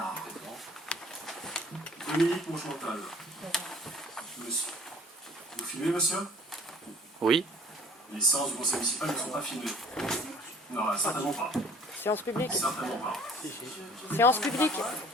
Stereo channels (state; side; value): normal; both; correlation 0.52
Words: Dominique Monchantal. Monsieur. Vous filmez, monsieur? Oui. Les séances du conseil municipal ne sont pas filmées. Non, certainement pas. Séance publique. Certainement pas. Séance publique.